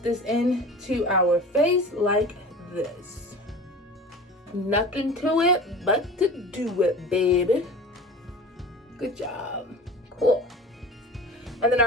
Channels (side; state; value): both; normal; correlation 0.37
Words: into our face like this. Nothing to it but to do it, baby. Good job. Cool. And then